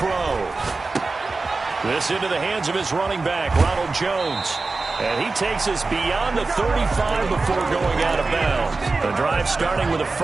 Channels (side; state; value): left; quieter; 3.8 dB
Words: This into the hands of his running back, Ronald Jones. And he takes us beyond the 35 before going out of bounds. The drive starting with a